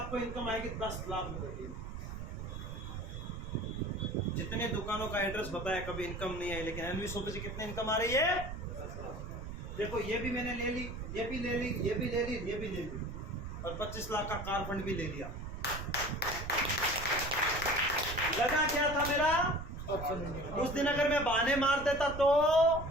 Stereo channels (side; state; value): right; noise; rumble, 8 dB below the sound